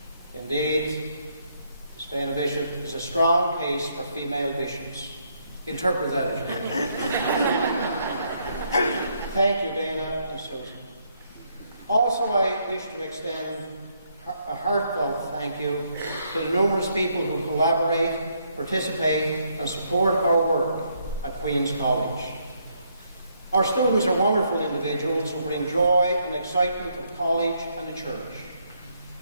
Indeed, Miss Dana Bishop is a strong case for female bishops. Interpret that as you wish. Thank you, Dana and Susan. Also, I wish to extend a heartfelt thank you to the numerous people who collaborate, participate, and support our work at Queen's College. Our students are wonderful individuals who bring joy and excitement to the college and the church.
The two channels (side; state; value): both; inverted; correlation -0.73